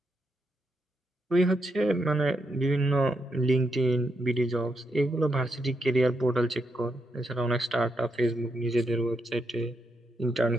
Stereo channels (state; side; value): normal; both; correlation 0.82